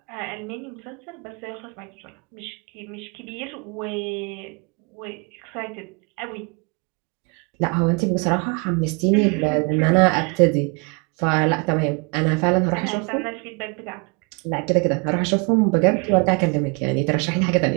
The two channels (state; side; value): quieter; left; 32.6 dB